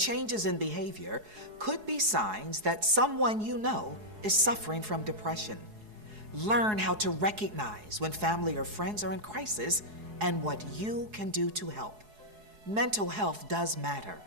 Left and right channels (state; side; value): late; left; 4.7 ms